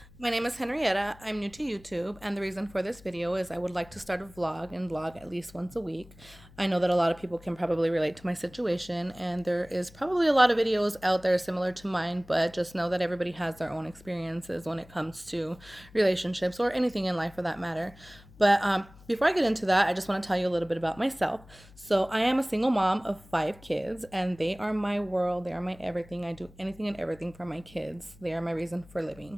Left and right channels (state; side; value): noise; left; hum, 23 dB below the sound